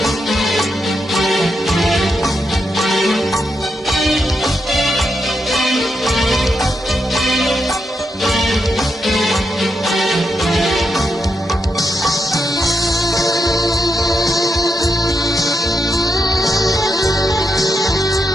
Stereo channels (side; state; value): both; normal; correlation 0.83